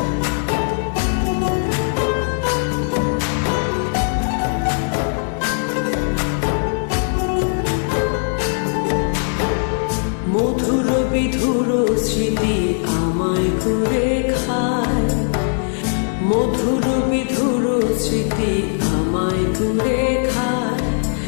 মধুর বিধুর স্মৃতি আমায় করে খায়, মধুর বিধুর স্মৃতি আমায় করে খায়।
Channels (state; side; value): silent; right; 65 dB below the other